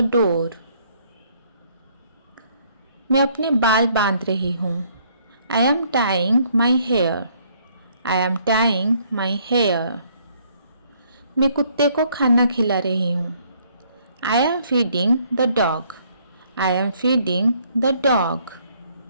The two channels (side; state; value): both; inverted; correlation -0.65